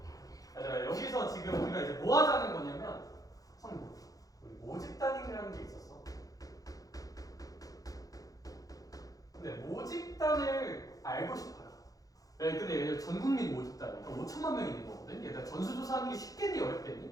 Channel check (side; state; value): right; late; 0.17 ms